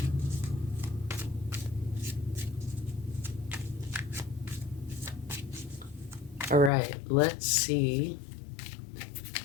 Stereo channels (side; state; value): right; drops out; at 6.7 s